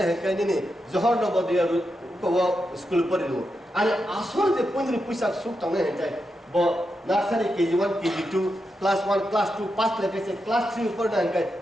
hengkai ni Johor Nobodaya ko school pore lo. Ani asal je pundri puisak suk tang hengkai, bo nursery KG1 KG2 class 1 class 2 pass leke se class 3 pore na hengkai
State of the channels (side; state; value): both; normal; correlation 0.86